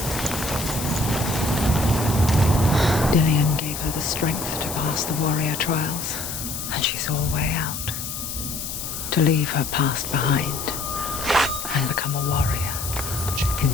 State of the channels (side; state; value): left; noise; hiss, 6 dB below the sound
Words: strength to pass the warrior trials, and she saw a way out. To leave her past behind and become a warrior in